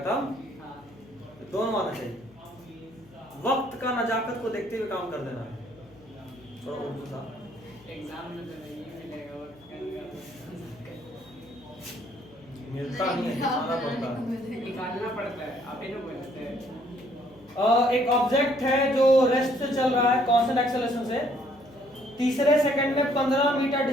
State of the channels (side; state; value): left; noise; hum, 26 dB below the sound